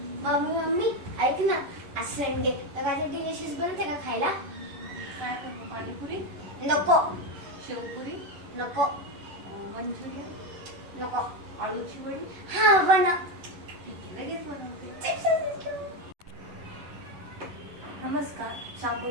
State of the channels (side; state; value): left; late; 11 ms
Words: मम्मी मम्मी ऐक ना, आज संडे तर काय डिलिशियस बनवते का खायला? काय करू? पाणीपुरी, नको शेवपुरी, नको मंचुरियन, नको. आलूची वडी. हा बनव. ठीक आहे, लगेच बनवते. नमस्कार,